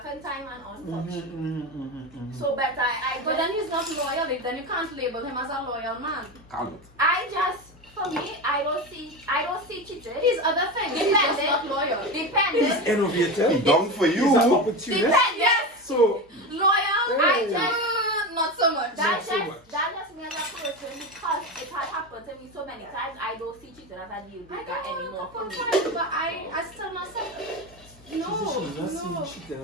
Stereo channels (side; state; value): both; normal; correlation 0.21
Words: in time and unfuck shit. So better I But then he's not loyal. Then you can't label him as a loyal man. Can't. I just, for me, I don't see cheating. He's other things. He's just not loyal. Dependent. innovative. Done for He's an you. opportunist. Dependent. So, Loyal? I just, Not so much. that's so just, much. that's just me as a person because it has happened to me so many times. I don't see cheating as a deal I breaker don't anymore for want me. to fight, but I still not say. she's not No. seeing cheating